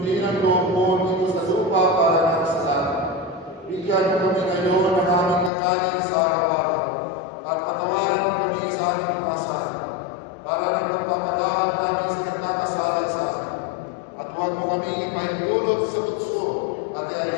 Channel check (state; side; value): drops out; right; at 5.5 s